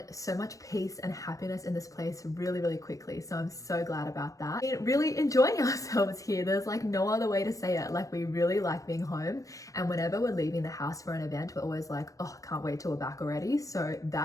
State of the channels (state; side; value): late; right; 0.16 ms